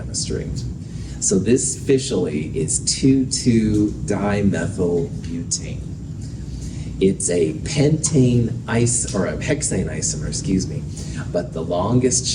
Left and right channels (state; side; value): identical; both; correlation 1.00